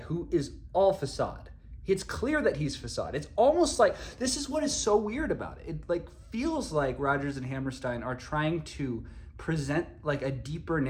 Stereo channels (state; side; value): identical; both; correlation 1.00